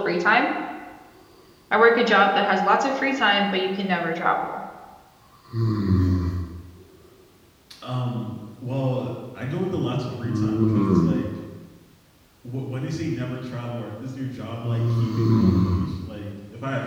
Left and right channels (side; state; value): both; identical; correlation 1.00